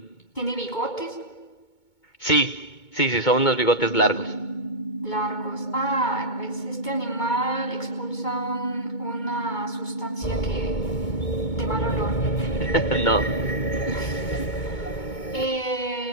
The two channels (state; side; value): late; right; 2.2 ms